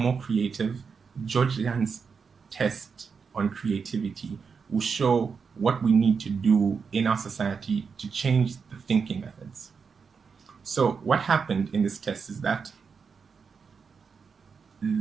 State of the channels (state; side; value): quieter; left; 5.7 dB